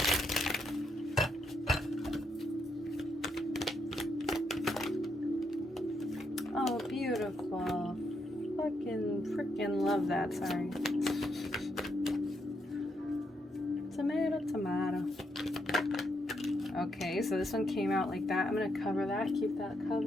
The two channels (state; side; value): normal; both; correlation 0.78